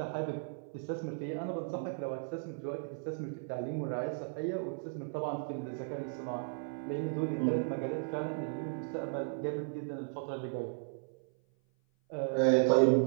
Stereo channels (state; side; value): silent; left; 54 dB below the other